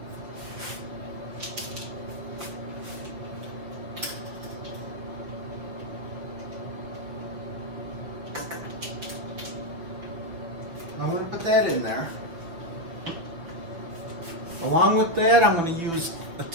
I'm going to put that in there. Along with that, I'm going to use a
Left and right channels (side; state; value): left; late; 6.2 ms